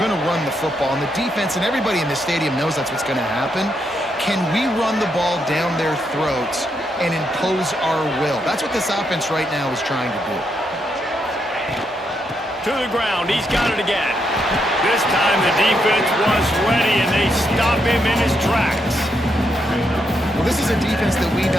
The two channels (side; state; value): both; normal; correlation 0.79